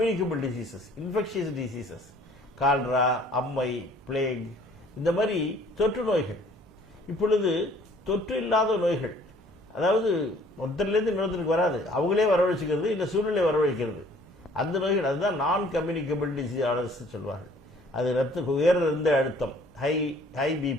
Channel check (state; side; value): normal; both; correlation 0.56